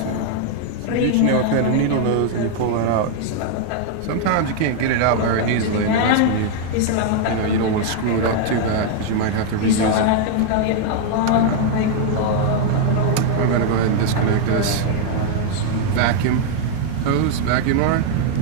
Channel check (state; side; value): different; both; correlation 0.00